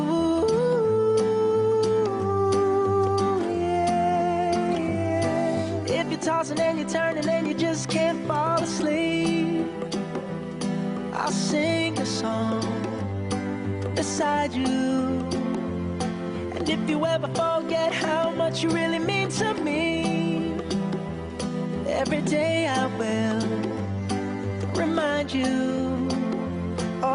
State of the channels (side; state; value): both; identical; correlation 1.00